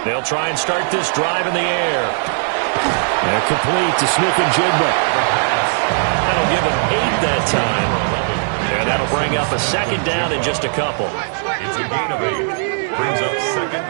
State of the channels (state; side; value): silent; left; 67 dB below the other